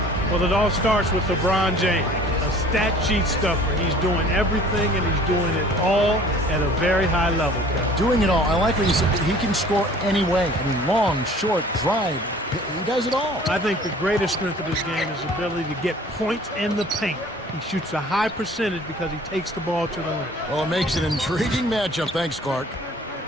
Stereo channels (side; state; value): both; normal; correlation 0.49